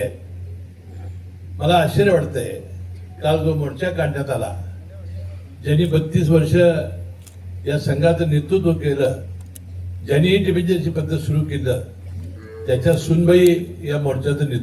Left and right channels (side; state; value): both; identical; correlation 1.00